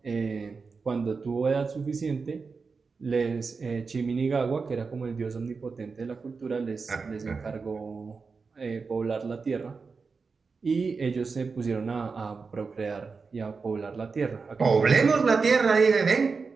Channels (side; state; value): left; quieter; 4.8 dB